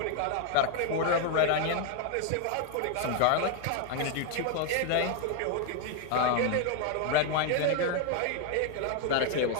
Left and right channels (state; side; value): different; both; correlation 0.01